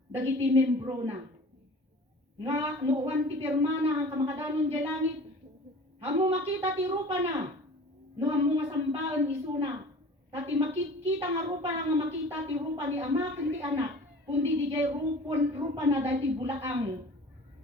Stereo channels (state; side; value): normal; both; correlation 0.43